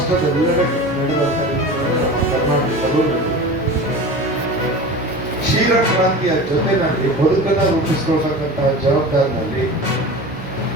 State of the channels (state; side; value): normal; both; correlation 0.33